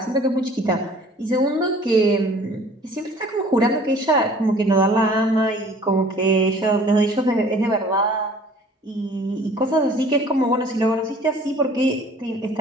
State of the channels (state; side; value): normal; both; correlation 0.51